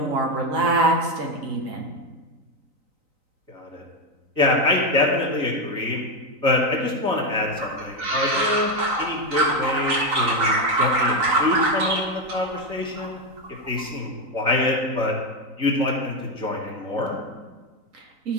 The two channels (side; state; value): left; late; 3.9 ms